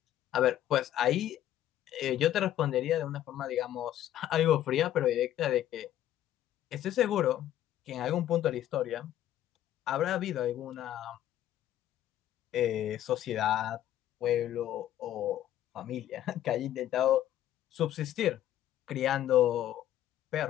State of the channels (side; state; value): right; quieter; 12.3 dB